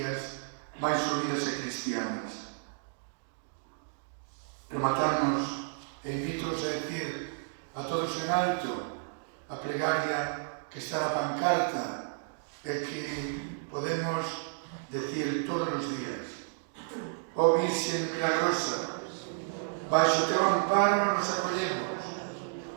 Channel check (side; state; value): left; silent; digital silence